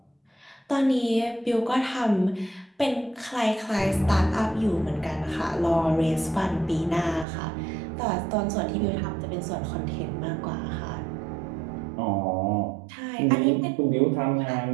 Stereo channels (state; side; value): drops out; left; at 7.2 s